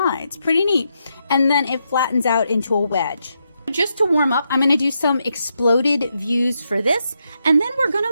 Pretty neat. And then it flattens out into a wedge. Just to warm up, I'm going to do some exploded views for this, and then we're going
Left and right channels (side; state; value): both; inverted; correlation -0.82